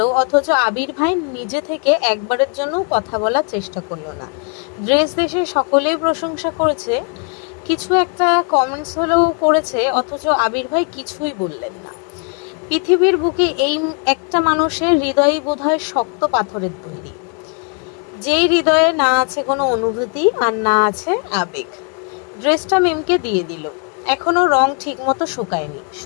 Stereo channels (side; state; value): right; quieter; 38.8 dB